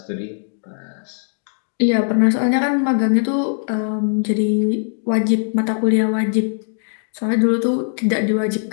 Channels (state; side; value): silent; right; digital silence